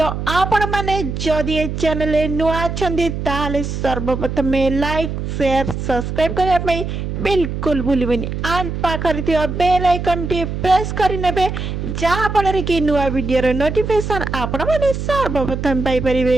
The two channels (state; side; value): noise; right; hum, 4 dB below the sound